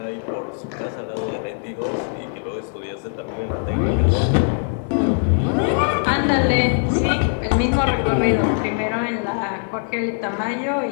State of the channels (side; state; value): right; silent; 57 dB below the other